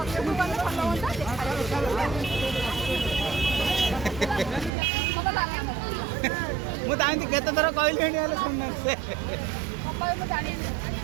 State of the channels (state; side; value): drops out; left; at 4.7 s